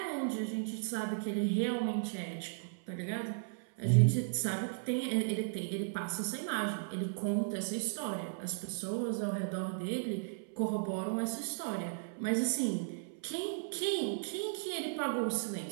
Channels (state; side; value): silent; left; 54 dB below the other